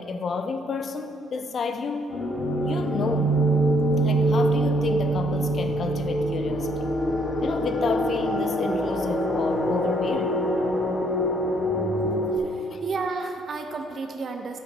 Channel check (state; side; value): normal; both; correlation 0.67